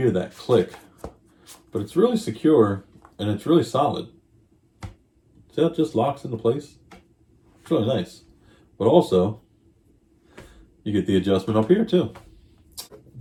that click, but it's really secure and it's really solid. See how it just locks into place? It's really nice. But also, you get the adjustment up here too. At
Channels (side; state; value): both; identical; correlation 1.00